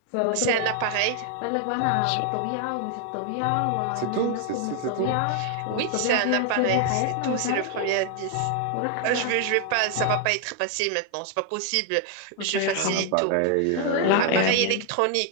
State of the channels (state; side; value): different; both; correlation 0.00